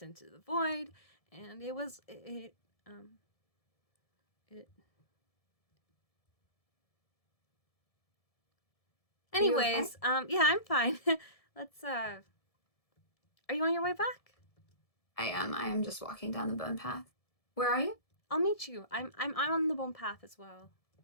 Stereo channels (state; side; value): late; right; 1.7 ms